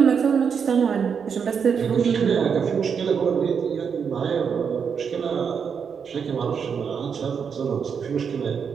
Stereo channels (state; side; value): quieter; left; 6.6 dB